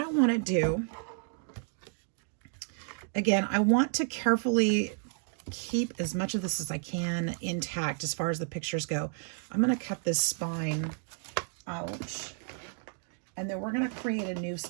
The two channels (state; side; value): silent; left; 57 dB below the other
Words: want to do, again, I want to carefully keep as much of this as I can intact as far as the pictures go. I'm going to cut this spine out, and then we're going to create a new